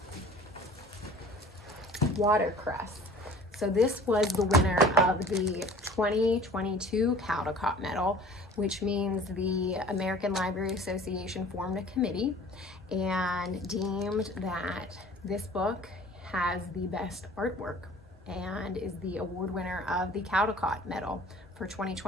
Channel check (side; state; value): both; normal; correlation 0.46